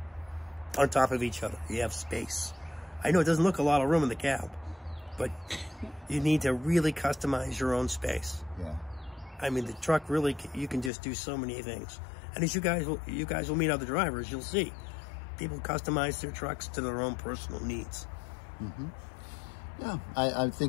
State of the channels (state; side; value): drops out; right; at 10.9 s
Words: on top of each other. You have space. I know it doesn't look a lot of room in the cab, but you need to really customize your own space. Yeah. I mean, the truck really, you can just do so many things. And as you guys will meet other drivers, you'll see people customize their trucks to their own personal needs. Yeah, I